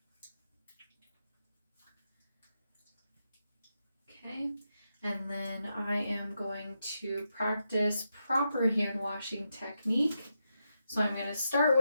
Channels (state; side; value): inverted; both; correlation -0.85